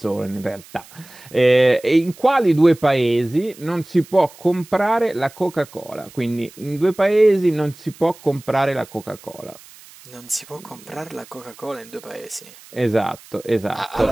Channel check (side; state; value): right; noise; hiss, 22 dB below the sound